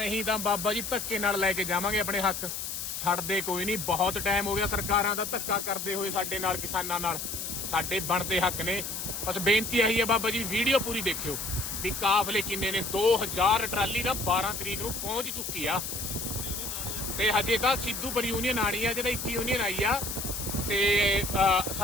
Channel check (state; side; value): noise; left; hiss, 5 dB below the sound